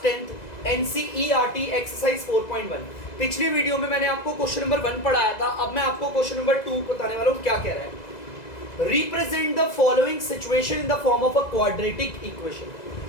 10th NCERT exercise 4.1। पिछली video में मैंने आपको क्वेश्चन नंबर 1 पढ़ाया था। अब मैं आपको क्वेश्चन नंबर 2 बताने वाला हूँ। क्या कह रहा है, represent the following situation in the form of a quadratic equation.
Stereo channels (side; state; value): right; late; 2.0 ms